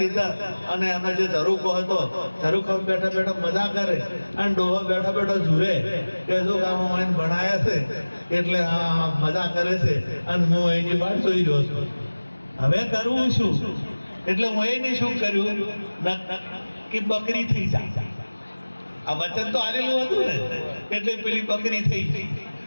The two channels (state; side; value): inverted; both; correlation -1.00